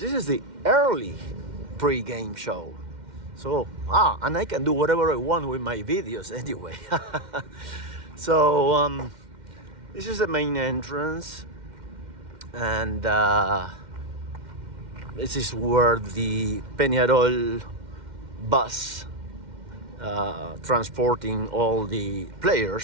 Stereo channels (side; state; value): left; late; 2.1 ms